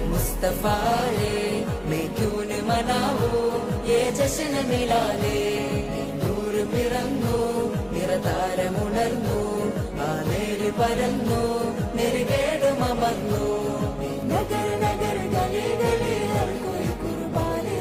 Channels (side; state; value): both; identical; correlation 1.00